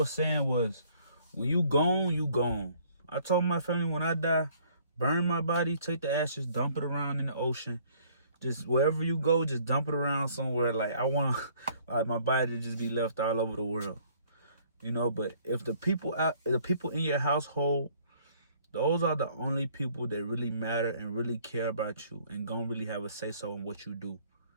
saying was, when you gone, you gone. I told my family when I die, burn my body, take the ashes, dump it around in the ocean. Just wherever you go, just dump it around somewhere. Like, I want like my body to just be left all over the world. You know, but if the people in your household, those are the only people that really matter and really care about you and gonna really have a say-so in what you do.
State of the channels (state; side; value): inverted; both; correlation -0.59